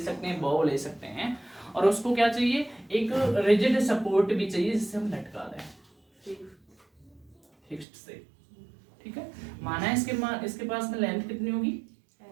हैं, बॉल ले सकते हैं, और उसको क्या चाहिए, एक रिजिड सपोर्ट भी चाहिए जिससे हम लटका दें फिक्स्ड से। ठीक है, माना है इसके पास में लेंथ कितनी होगी,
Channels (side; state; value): left; drops out; at 7.9 s